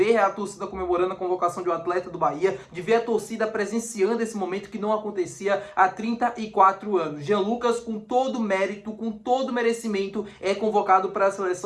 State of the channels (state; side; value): identical; both; correlation 1.00